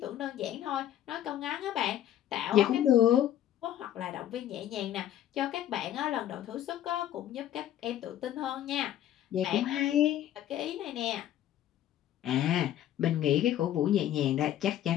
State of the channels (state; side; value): quieter; right; 11.8 dB